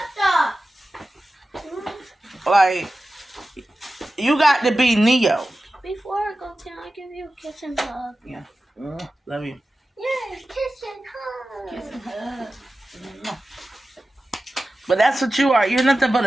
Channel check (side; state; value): both; normal; correlation 0.94